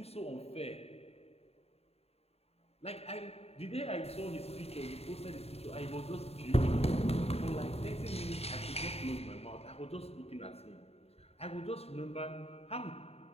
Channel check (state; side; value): late; right; 0.30 ms